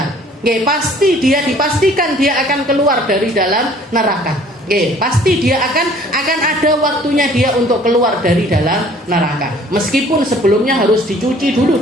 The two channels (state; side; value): normal; both; correlation 0.54